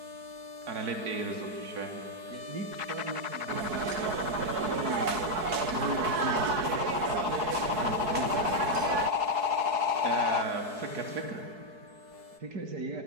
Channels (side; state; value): left; late; 4.7 ms